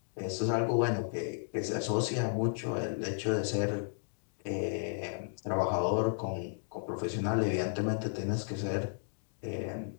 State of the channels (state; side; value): silent; right; digital silence